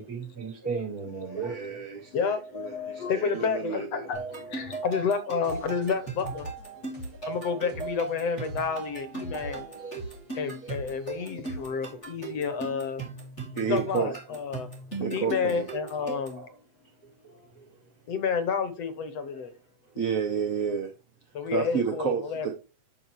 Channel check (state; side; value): late; right; 8.0 ms